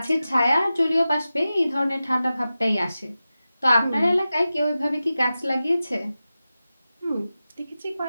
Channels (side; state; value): both; inverted; correlation -0.94